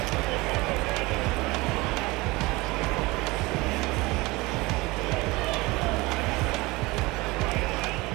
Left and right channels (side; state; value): left; quieter; 22.5 dB